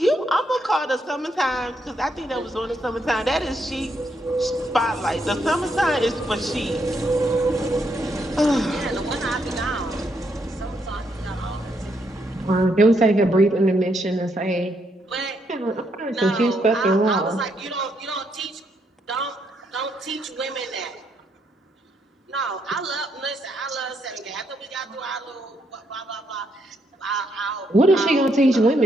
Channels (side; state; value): both; normal; correlation 0.76